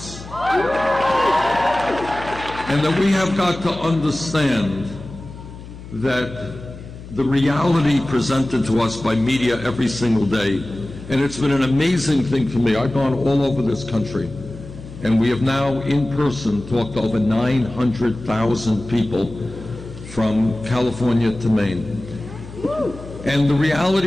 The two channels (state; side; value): noise; left; hum, 15 dB below the sound